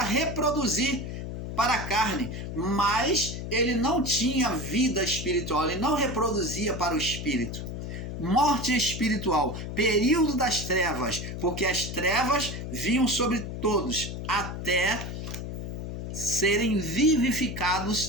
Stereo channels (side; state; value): left; noise; hum, 6 dB below the sound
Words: para a carne, mas ele não tinha vida espiritual, ele não reproduzia para o espírito. Morte espiritual, período das trevas, porque as trevas vinham sobre todos, até serem